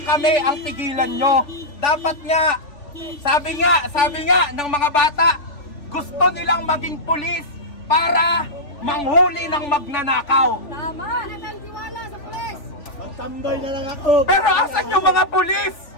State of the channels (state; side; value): late; right; 3.4 ms